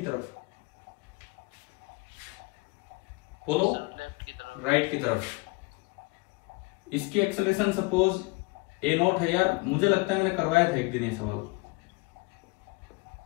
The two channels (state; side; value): quieter; right; 25.9 dB